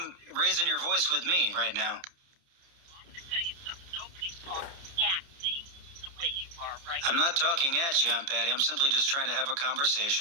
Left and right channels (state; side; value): late; left; 29 ms